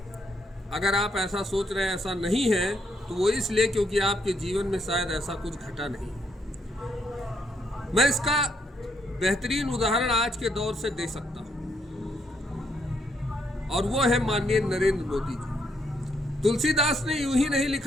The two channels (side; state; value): both; normal; correlation 0.75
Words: अगर आप ऐसा सोच रहे हैं ऐसा नहीं है तो वो इसलिए क्योंकि आपके जीवन में शायद ऐसा कुछ घटा नहीं है। मैं इसका बेहतरीन उदाहरण आज के दौर से दे सकता हूं और वो है माननीय नरेंद्र मोदी जी। तुलसीदास ने यूं ही नहीं